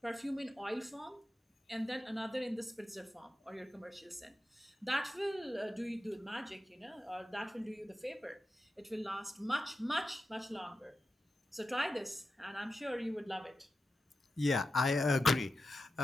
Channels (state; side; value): normal; both; correlation 0.91